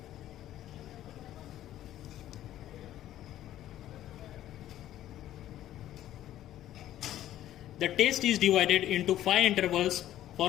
The test is divided into 5 intervals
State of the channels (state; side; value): quieter; right; 12.8 dB